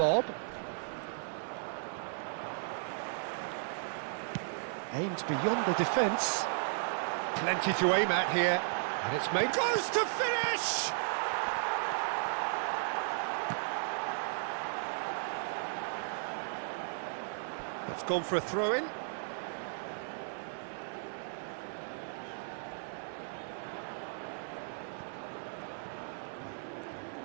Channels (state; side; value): silent; left; digital silence